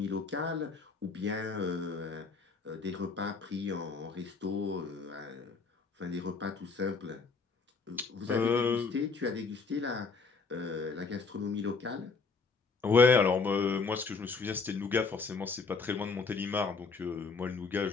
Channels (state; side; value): quieter; right; 4.6 dB